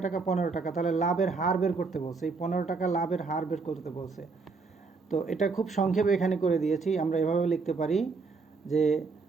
টাকা? 15 টাকা। তাহলে লাভের হার বের করতে বলছে, এই 15 টাকা লাভের হার বের করতে বলছে। তো এটা খুব সংক্ষেপে এখানে করে দিয়েছি। আমরা এভাবে লিখতে পারি যে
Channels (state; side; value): quieter; left; 4.4 dB